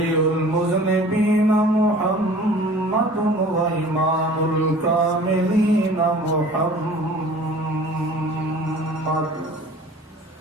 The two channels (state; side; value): normal; both; correlation 0.46